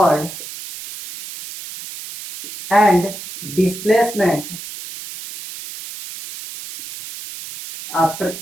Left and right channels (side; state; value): right; noise; hiss, 12 dB below the sound